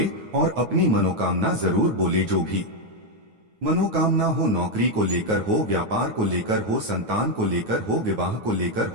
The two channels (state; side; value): late; left; 9.3 ms